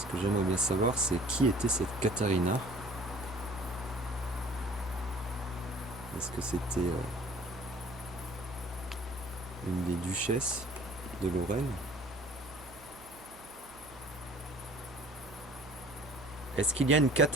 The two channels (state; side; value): noise; right; hum, 22 dB below the sound